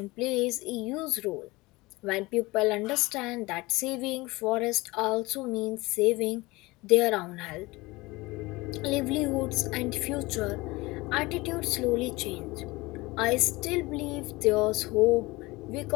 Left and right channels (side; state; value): right; quieter; 21.8 dB